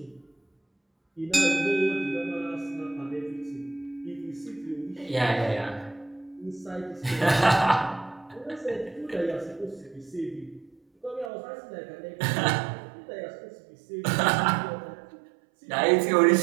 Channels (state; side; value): drops out; left; at 11.3 s